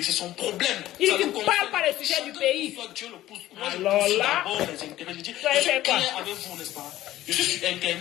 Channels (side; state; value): right; quieter; 14.6 dB